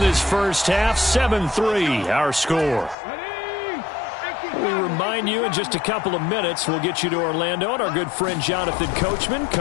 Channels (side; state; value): right; drops out; at 3.0 s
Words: this first half. 7-3, our score. We remind you in just a couple of minutes, we'll get you to Orlando and our good friend Jonathan Coachman.